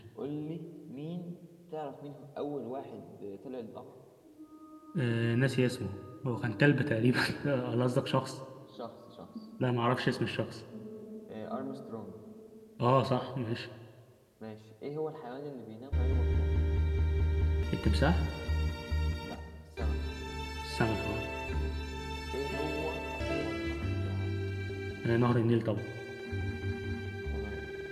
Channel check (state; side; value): identical; both; correlation 1.00